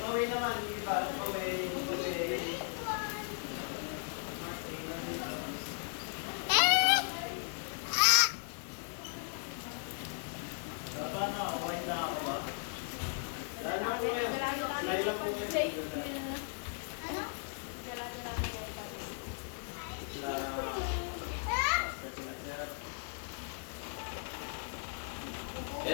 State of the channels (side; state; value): right; silent; 53 dB below the other